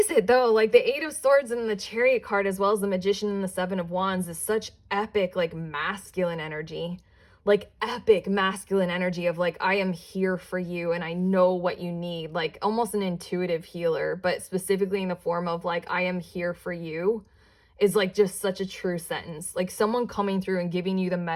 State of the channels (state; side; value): identical; both; correlation 1.00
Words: it though? Like the Eight of Swords and the Chariot card, as well as the Magician and the Seven of Wands, is such epic, like masculine energy, like epic masculine energy of like, I am here for you and I know what you need, like almost an intuitive healer, but specifically in the form of like, I am here for you is like just such a true sentence. Like someone coming through and giving you the